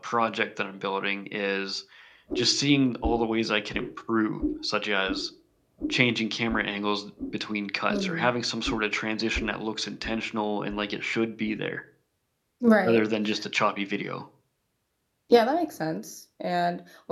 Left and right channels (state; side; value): identical; both; correlation 1.00